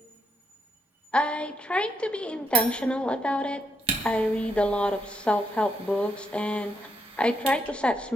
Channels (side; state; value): both; normal; correlation 0.79